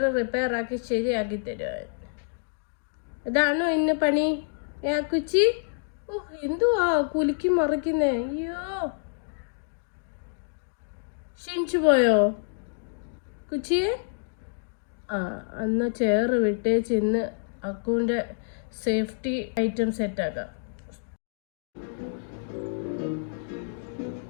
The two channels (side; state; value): right; silent; digital silence